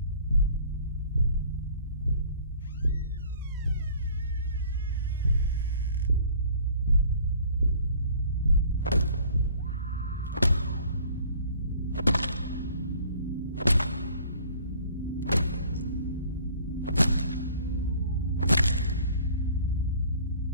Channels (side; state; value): both; inverted; correlation -0.52